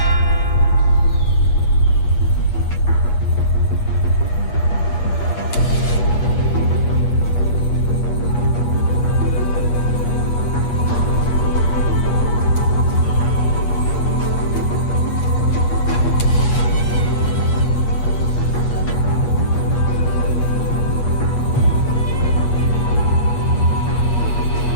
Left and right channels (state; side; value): late; right; 8.4 ms